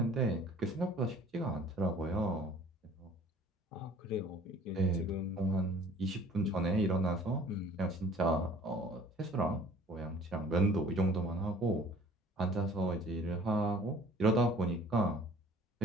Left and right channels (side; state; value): both; normal; correlation 0.51